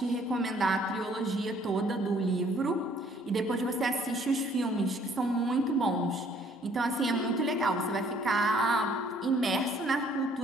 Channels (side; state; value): both; normal; correlation 0.61